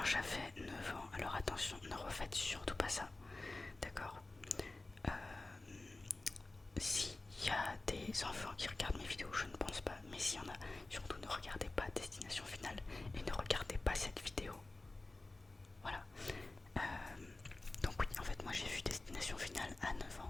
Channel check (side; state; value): right; quieter; 3.0 dB